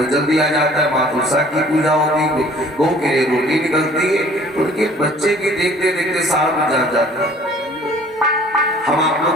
जल दिया जाता है, माँ तुलसा की पूजा होती है, गौ के लिए रोटी निकलती है, तो उनके बच्चे की देखते देखते साल में जाता है। हम आप लोग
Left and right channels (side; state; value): both; normal; correlation 0.53